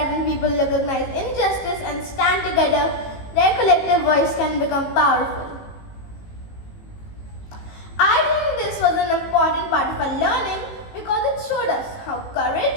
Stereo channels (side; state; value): right; late; 18 ms